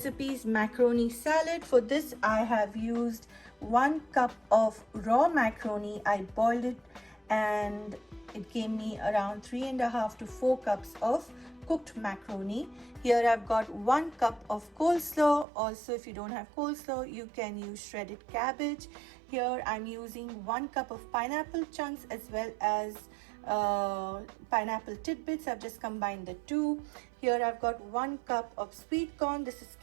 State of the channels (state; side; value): drops out; left; at 15.5 s